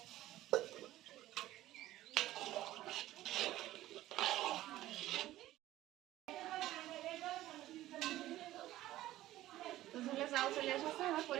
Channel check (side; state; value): left; quieter; 15.0 dB